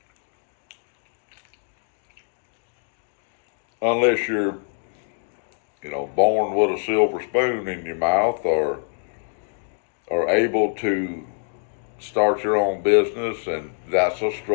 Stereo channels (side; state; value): right; silent; digital silence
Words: Unless you're, born with a silver spoon in your mouth or able to start your own business, and that's a